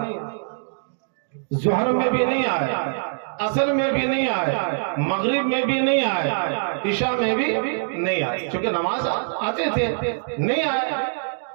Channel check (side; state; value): left; silent; digital silence